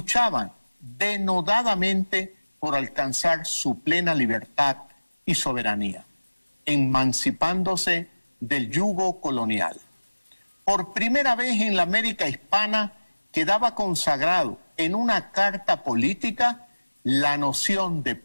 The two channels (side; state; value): both; inverted; correlation -1.00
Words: denodadamente por alcanzar su plena libertad y soberanía, emancipándose del yugo colonial. Por primera vez en la América hispana quedaba consagrado en una carta política la noción de